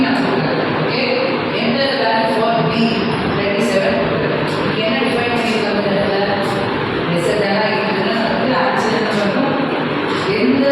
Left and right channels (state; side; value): identical; both; correlation 1.00